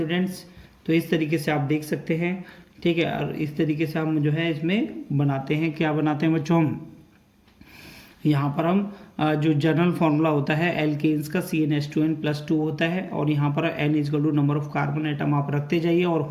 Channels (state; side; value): identical; both; correlation 1.00